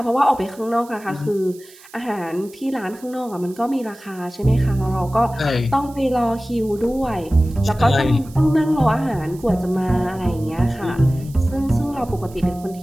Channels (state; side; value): noise; right; hiss, 23 dB below the sound